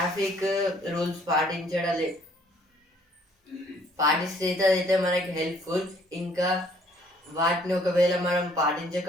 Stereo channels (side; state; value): both; normal; correlation 0.61